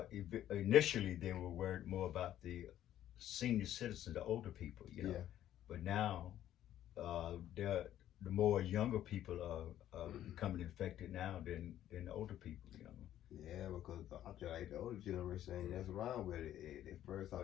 initially they were worried more about the senior citizens, the older people, But now, the more younger people are becoming infected now than the older people, Yeah, because I feel like the older generation ain't messing around with it. The first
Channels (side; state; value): right; quieter; 12.0 dB